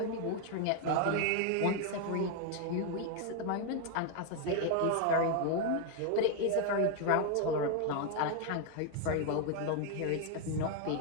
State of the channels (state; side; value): different; both; correlation 0.01